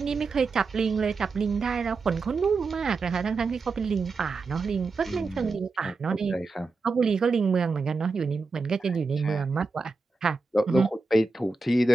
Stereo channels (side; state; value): left; quieter; 4.1 dB